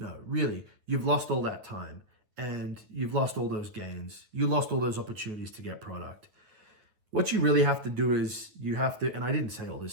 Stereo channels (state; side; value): late; left; 9.6 ms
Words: really, you've lost all that time and you've lost all those gains. You lost all those opportunities to get product. What you really have to do is you have to, and I didn't say all this